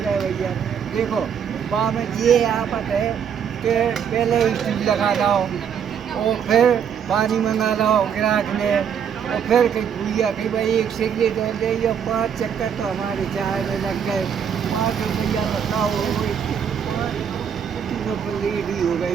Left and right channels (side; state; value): left; quieter; 7.8 dB